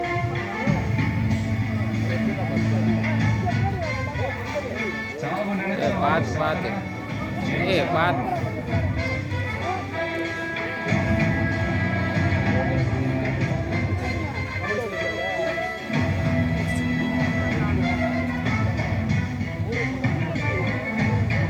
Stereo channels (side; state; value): both; identical; correlation 1.00